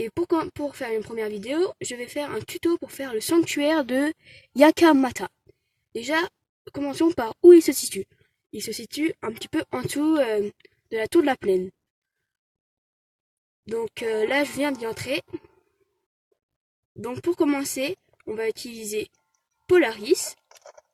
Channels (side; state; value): both; identical; correlation 1.00